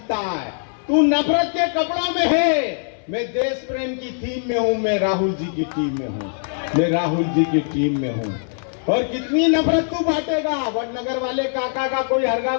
है। तू नफरत के कपड़ों में है, मैं देश प्रेम की थीम में हूं, मैं राहुल जी की टीम में हूं, मैं राहुल जी की टीम में हूं। और कितनी नफरत तू बांटेगा। वडनगर वाले काका का कोई हरगा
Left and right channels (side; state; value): right; silent; 65 dB below the other